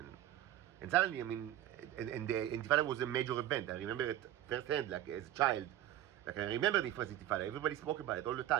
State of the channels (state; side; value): quieter; left; 12.8 dB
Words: And suddenly, I mean, and the Intifada was a major event. I remember it firsthand, like, as a child. Like, I remember the first Intifada. Everybody spoke about it all the